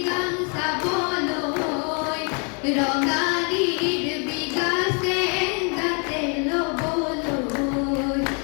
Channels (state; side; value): quieter; right; 37.5 dB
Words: গান চাবলৈ ৰঙালীৰ বিগাছে গাতে ল'বলৈ